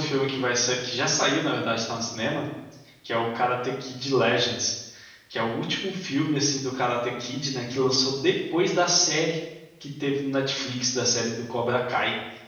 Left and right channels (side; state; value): both; identical; correlation 1.00